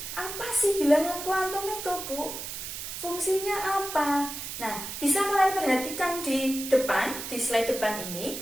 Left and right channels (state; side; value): noise; right; hiss, 7 dB below the sound